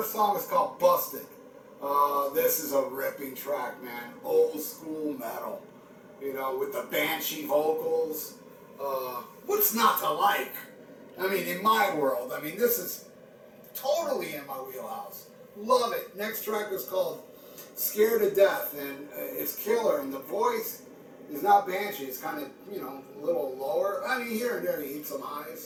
song is called Busted. This is a ripping track, man. Old school metal, with the banshee vocals. What's not to like? I mean, in my world, this is totally in my wheelhouse. Love it. Next track is called Scared to Death, and it's killer, and the voice is not banshee. It's kind of, a little lower. Here and there he eats some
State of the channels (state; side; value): identical; both; correlation 1.00